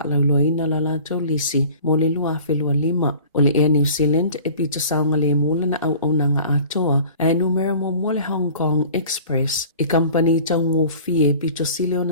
lauloa ina la lato lisi mo le lua filua 5. O le Air New Zealand e pito saunga le mula na au aunanga atoa e numero mo le Hong Kong Express e kampani taungo fie pito sileo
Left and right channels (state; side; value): inverted; both; correlation -0.46